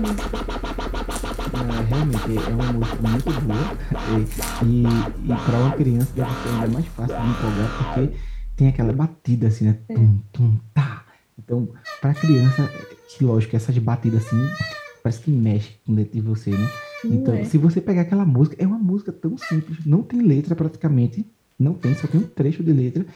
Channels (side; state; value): both; identical; correlation 1.00